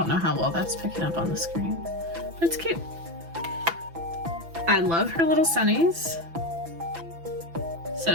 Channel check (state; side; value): late; left; 6.0 ms